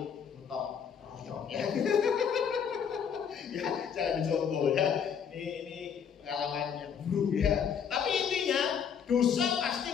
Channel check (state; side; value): quieter; right; 7.4 dB